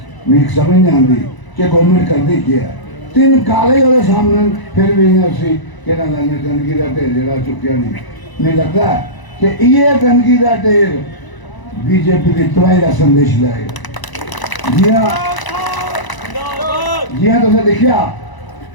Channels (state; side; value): late; right; 1.0 ms